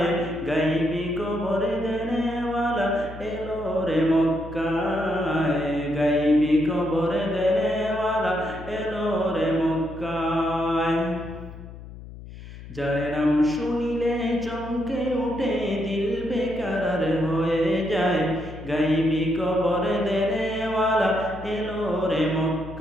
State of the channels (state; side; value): noise; left; hum, 14 dB below the sound